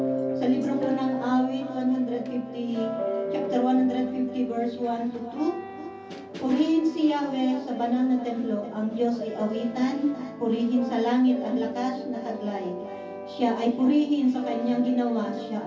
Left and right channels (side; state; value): both; identical; correlation 1.00